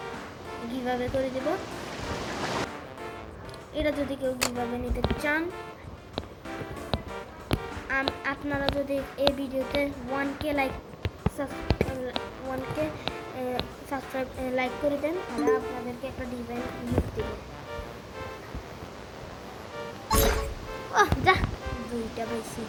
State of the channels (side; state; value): both; identical; correlation 1.00